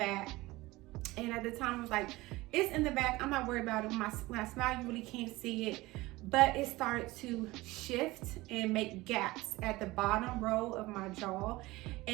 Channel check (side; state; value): left; quieter; 20.0 dB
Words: And at the time, I was like, it's in the back. I'm not worried about it. When I smile, you really can't see it. But it started to shift and make gaps at the bottom row of my jaw.